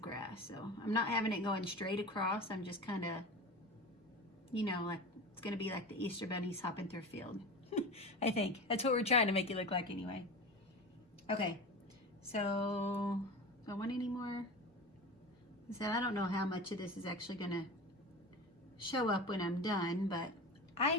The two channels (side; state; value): both; normal; correlation 0.30